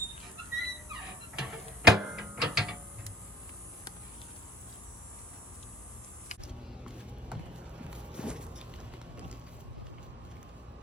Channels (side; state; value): both; normal; correlation 0.53